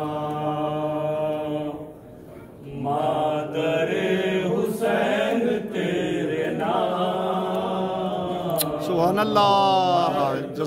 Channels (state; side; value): identical; both; correlation 1.00